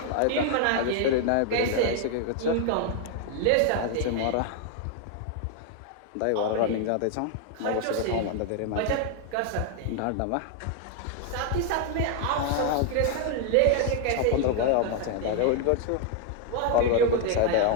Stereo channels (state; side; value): different; both; correlation 0.00